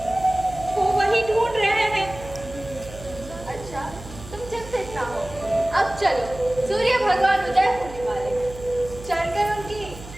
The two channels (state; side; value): noise; right; hum, 15 dB below the sound